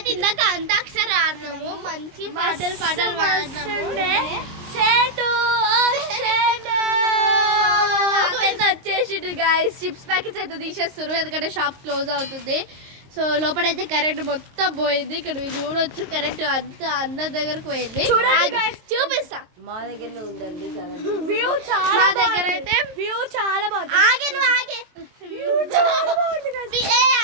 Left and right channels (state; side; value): late; left; 23 ms